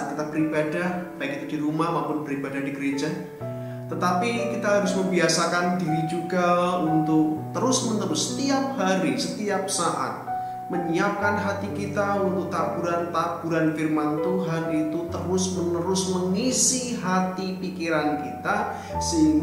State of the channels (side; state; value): both; identical; correlation 1.00